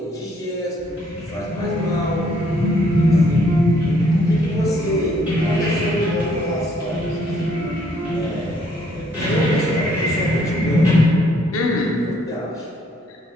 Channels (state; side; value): normal; both; correlation 0.67